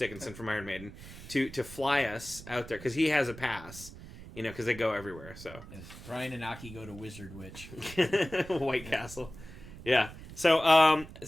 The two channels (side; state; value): right; noise; rumble, 15 dB below the sound